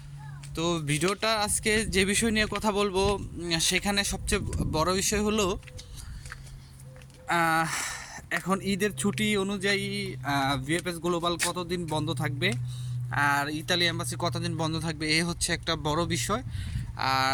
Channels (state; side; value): identical; both; correlation 1.00